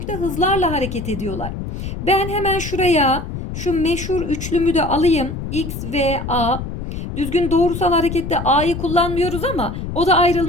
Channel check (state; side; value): noise; left; rumble, 7 dB below the sound